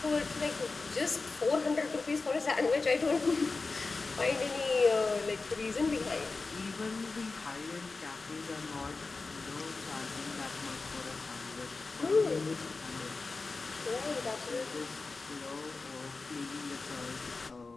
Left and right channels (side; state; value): right; quieter; 3.9 dB